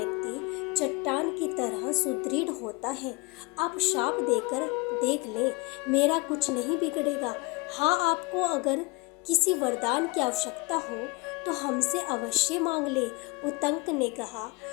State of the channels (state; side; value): quieter; right; 25.4 dB